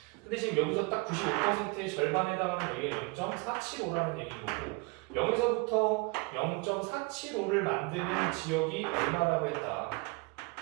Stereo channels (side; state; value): left; quieter; 28.7 dB